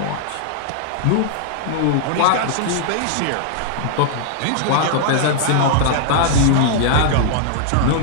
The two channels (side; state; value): both; different; correlation -0.01